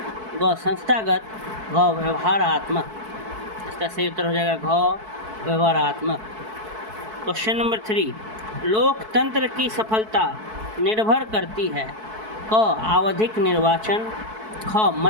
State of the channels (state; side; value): late; left; 4.6 ms